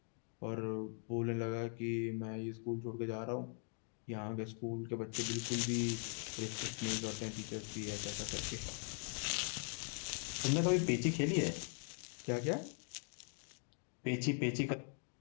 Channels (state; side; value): silent; right; 50 dB below the other